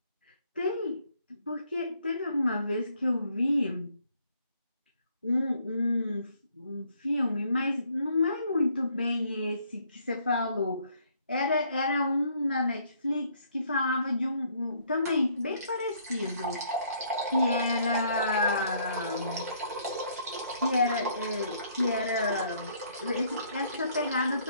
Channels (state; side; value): inverted; both; correlation -0.66